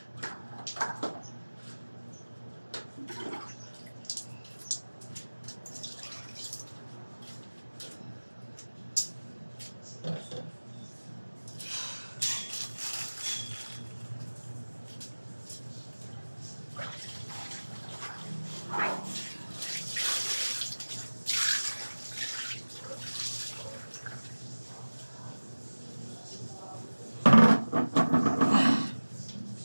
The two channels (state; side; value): inverted; both; correlation -1.00